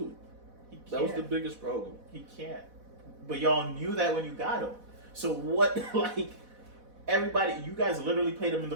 He can't. That was the biggest problem. He can't. But y'all knew that when you got him. So what, like, everybody, you guys literally played him in the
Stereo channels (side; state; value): left; late; 4.1 ms